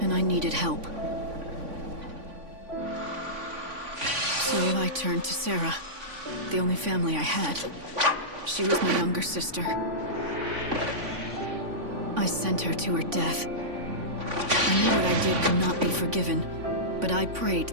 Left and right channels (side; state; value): left; late; 3.5 ms